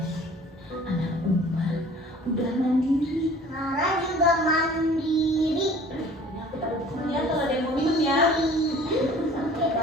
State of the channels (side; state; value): both; normal; correlation 0.49